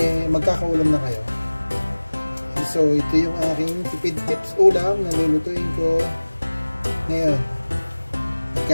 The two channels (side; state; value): both; inverted; correlation -1.00